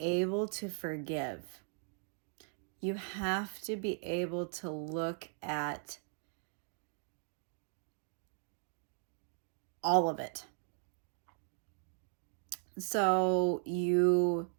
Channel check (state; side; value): silent; left; 53 dB below the other